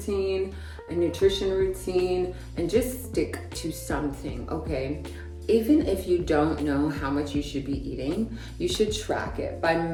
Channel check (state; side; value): identical; both; correlation 1.00